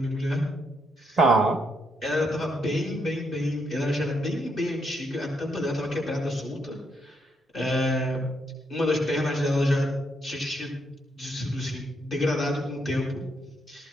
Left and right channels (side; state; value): both; normal; correlation 0.77